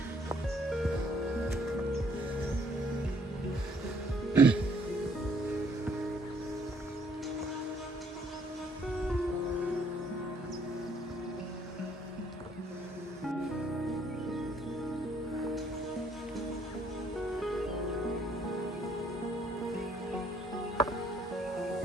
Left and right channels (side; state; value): both; normal; correlation 0.65